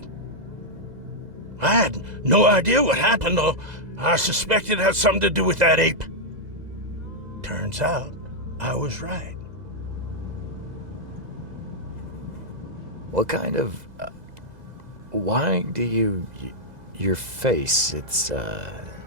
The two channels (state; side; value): late; left; 2.0 ms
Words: I had no idea what happened, though. I suspected it had something to do with that ape. Turns out, I was right. What kind of... why do you... your face, it's,